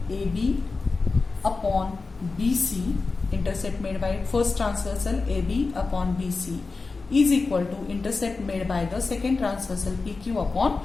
AB upon BC, intercept made by first transversal AB upon BC, is equal to intercept made by the second transversal PQ upon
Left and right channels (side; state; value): right; quieter; 4.0 dB